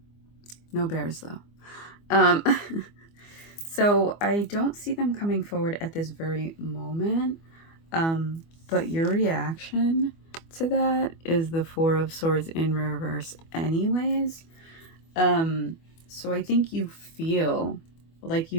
No bears, though. So I don't see them coming forward at this very moment. But your reaction to that is the 4 of Swords in reverse anyways. So I think you feel like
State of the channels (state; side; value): late; right; 24 ms